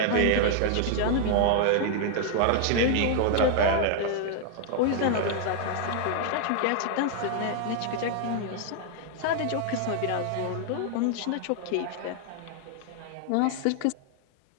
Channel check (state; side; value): different; both; correlation 0.00